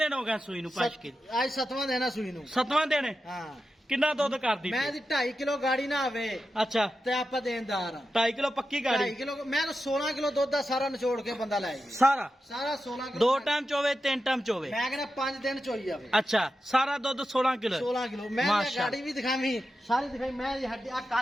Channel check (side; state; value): both; normal; correlation 0.90